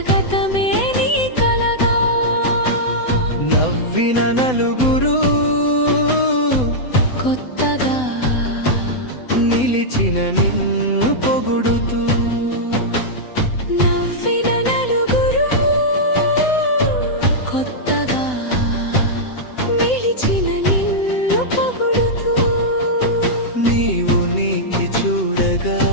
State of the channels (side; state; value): right; late; 7.9 ms